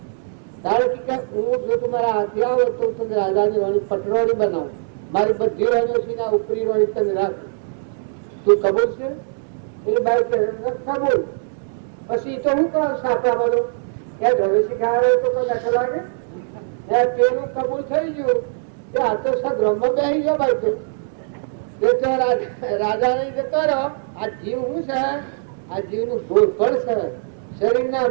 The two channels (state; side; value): silent; left; digital silence